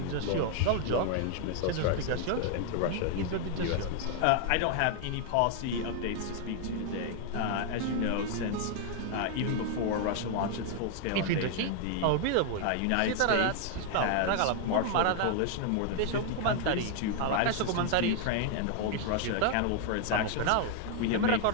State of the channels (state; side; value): different; both; correlation 0.00